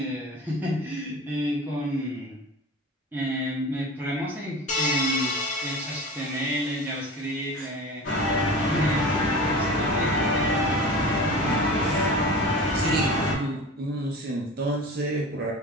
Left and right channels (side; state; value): both; normal; correlation 0.34